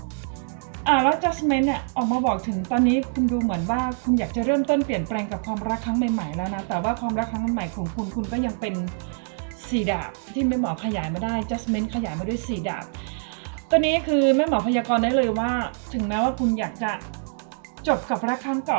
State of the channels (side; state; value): left; silent; 62 dB below the other